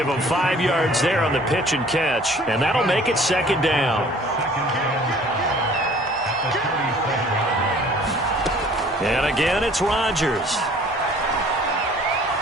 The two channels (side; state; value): both; normal; correlation 0.52